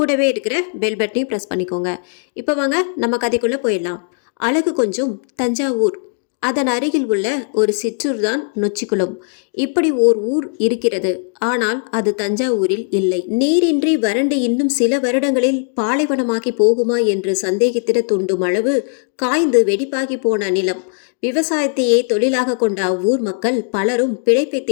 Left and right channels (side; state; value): right; silent; 58 dB below the other